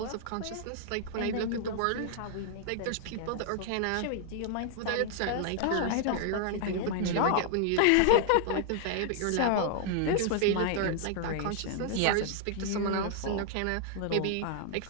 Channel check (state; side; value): different; both; correlation -0.01